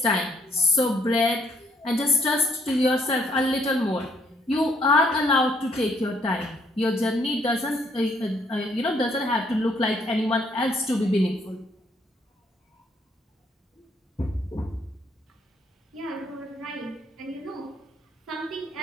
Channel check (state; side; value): normal; both; correlation 0.68